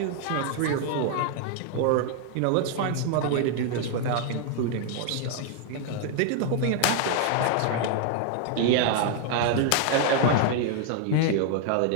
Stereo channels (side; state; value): both; different; correlation 0.00